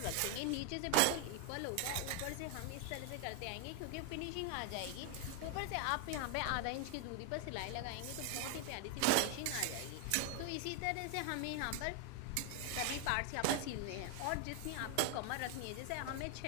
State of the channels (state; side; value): different; both; correlation 0.00